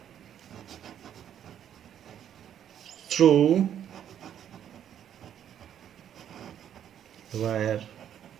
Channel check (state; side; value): quieter; left; 9.8 dB